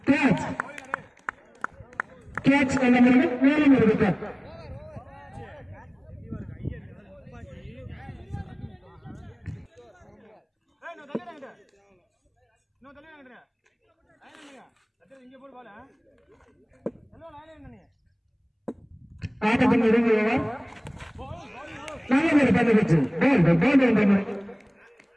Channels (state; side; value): identical; both; correlation 1.00